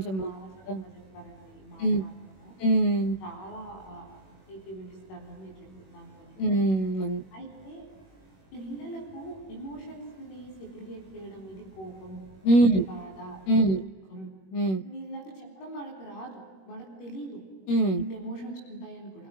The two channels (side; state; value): right; late; 21 ms